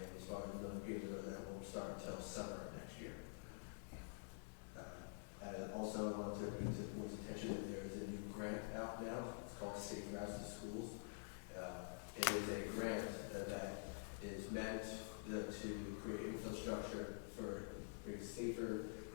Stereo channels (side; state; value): right; silent; digital silence